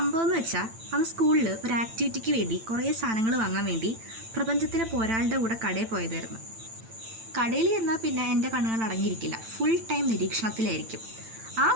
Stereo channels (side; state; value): left; late; 9.0 ms